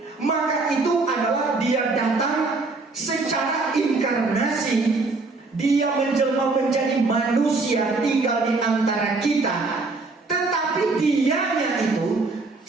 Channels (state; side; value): quieter; left; 3.7 dB